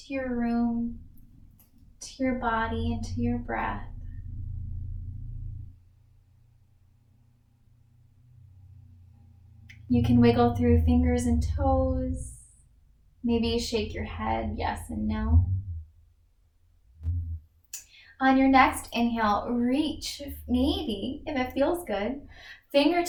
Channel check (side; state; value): both; identical; correlation 1.00